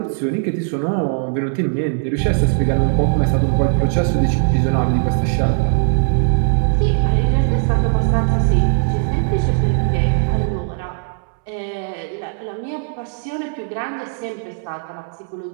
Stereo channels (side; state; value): left; silent; 67 dB below the other